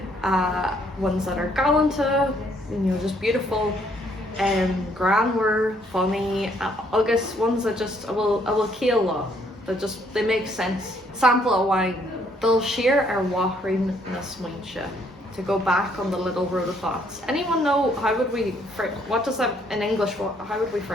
Ones that are gallanta, you know, just beautiful. Grammar, funny, August ones that just I will kill law, that just they make sense. Sample of wine. They'll share our wahrin na smuinche. To go back on the little road of thoughts. Anyone know how would we what does that in English? How would we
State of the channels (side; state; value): both; normal; correlation 0.67